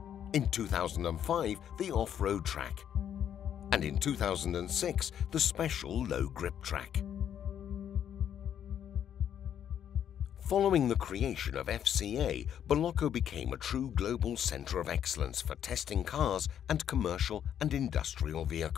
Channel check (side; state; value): right; quieter; 9.5 dB